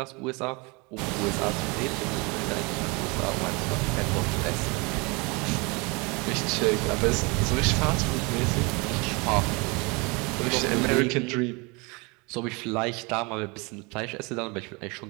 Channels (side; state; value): left; quieter; 28.3 dB